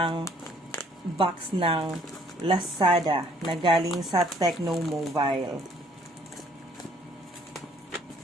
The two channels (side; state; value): both; normal; correlation 0.61